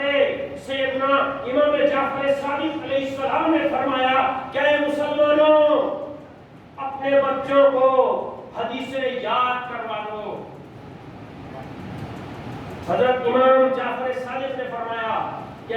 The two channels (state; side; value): identical; both; correlation 1.00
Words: سیدنا امام جعفر صادق علیہ السلام نے فرمایا کہ اے مسلمانوں، اپنے بچوں کو حدیثیں یاد کروا دو۔ حضرت امام جعفر صادق نے فرمایا کہ